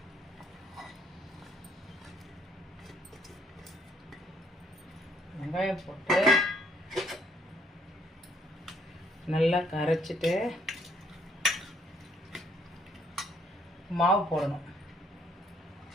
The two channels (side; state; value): both; normal; correlation 0.67